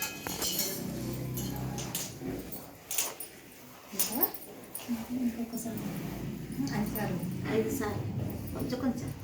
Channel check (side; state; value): both; identical; correlation 1.00